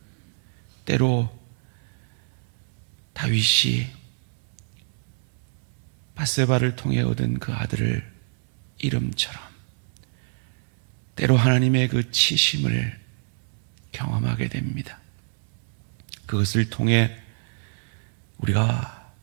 때로 다윗이 밧세바를 통해 얻은 그 아들을 이름처럼 때로 하나님의 그 치심을 경험하게 됩니다. 그것을 통해 우리가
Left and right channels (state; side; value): silent; left; 61 dB below the other